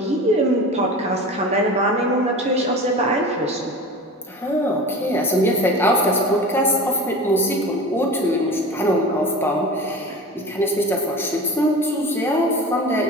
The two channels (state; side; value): normal; both; correlation 0.33